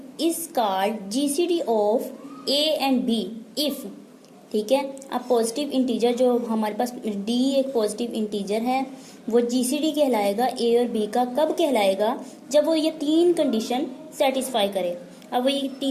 is called GCD of a and b if, ठीक है। अब पॉजिटिव इंटीजर जो हमारे पास डी एक पॉजिटिव इंटीजर है, वो जीसीडी कहलाएगा ए और बी का। कब कहलाएगा? जब वो ये तीन कंडीशन सेटिस्फाई करे। अब वो ये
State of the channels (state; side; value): identical; both; correlation 1.00